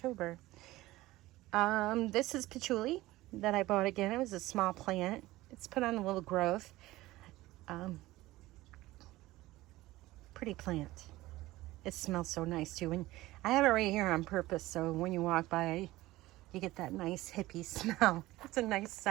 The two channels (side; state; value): left; quieter; 17.8 dB